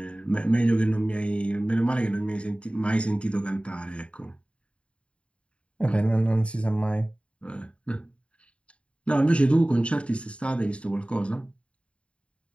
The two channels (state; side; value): late; right; 0.059 ms